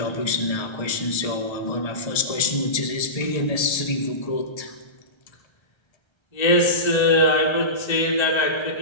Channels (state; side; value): late; right; 1.3 ms